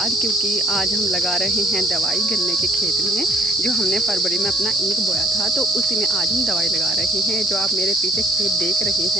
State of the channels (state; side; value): normal; both; correlation 0.60